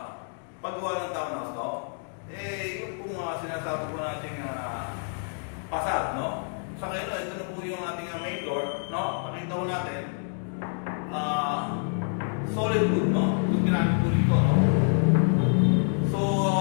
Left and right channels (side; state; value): right; silent; 60 dB below the other